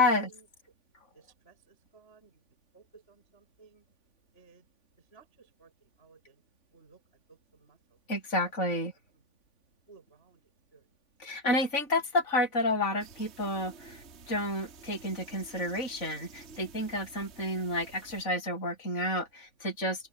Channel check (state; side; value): late; right; 3.5 ms